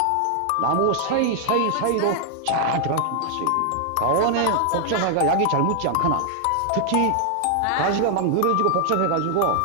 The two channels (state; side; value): different; both; correlation 0.00